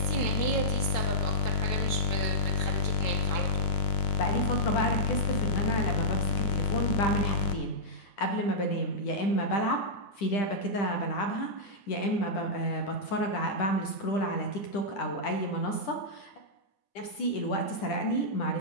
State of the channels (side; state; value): right; late; 10 ms